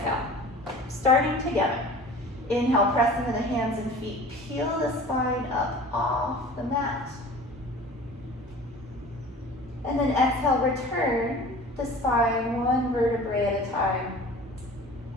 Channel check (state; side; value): normal; both; correlation 0.42